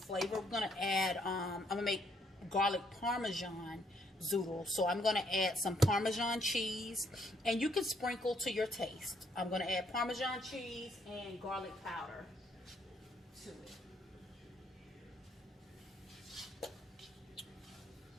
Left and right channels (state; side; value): normal; both; correlation 0.70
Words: we're gonna add. I'm gonna make garlic parmesan zoodle. So I'm gonna add some Parmesan cheese, and you can sprinkle to your taste. I'm gonna add Parmesan cheese and garlic powder to it.